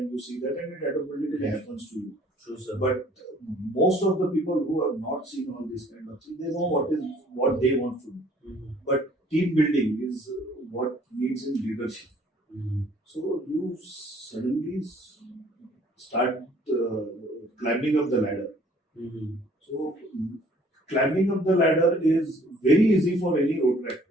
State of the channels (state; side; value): normal; both; correlation 0.57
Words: you see that and it automatically happens to you. True, sir. But most of the people who have not seen all this kind of thing, they know what they want to do. But team building is what needs in leadership. So you suddenly start climbing up the ladder. So climbing up the ladder is very easy for any Rotaractors